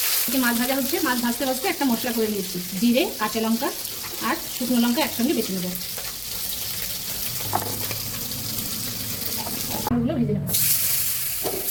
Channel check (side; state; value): both; identical; correlation 1.00